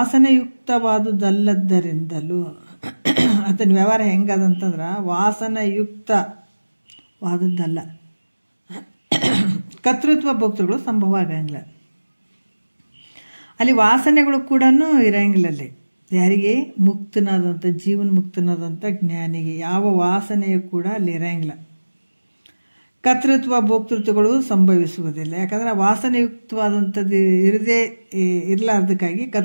ಆತನ ವ್ಯವಹಾರ ಹೆಂಗದಂತಂದ್ರೆ ವಾಸನಯುಕ್ತವಾದದ್ದಲ್ಲ. ಕರ್ತೃತ್ವ ಭೋಕ್ತೃಗಳು ಸಂಭವ ಆಗಂಗಿಲ್ಲ. ಅಲ್ಲಿ ವಾಸನೆಗಳು ಕೂಡ ಇರಂಗಿಲ್ಲ. ಅಲ್ಲಿ ಯಾರಿಗೆ ಮುಕ್ತನಾದಂಥ ಜೀವನ ಮುಕ್ತನಾದಂಥ ಜ್ಞಾನಿಗೆ ಯಾವ ವಾಸನೆಯು ಕೂಡ ಅಲ್ಲಿ ಇರಂಗಿಲ್ಲ. ಕರ್ತೃತ್ವ ಭೋಕ್ತೃತ್ವಗಳು ಸಂಭವಿಸುವುದಿಲ್ಲ. ಯಾಕಂದರೆ ವಾಸನೆಯುಕ್ತವಾದಂಥದ್ದು ಇರಲಾರ್ದಕ್ಕಾಗಿ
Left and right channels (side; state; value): both; inverted; correlation -1.00